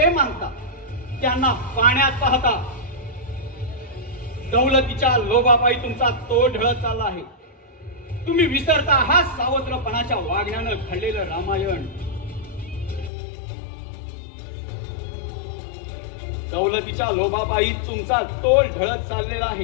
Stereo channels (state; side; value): drops out; right; at 13.1 s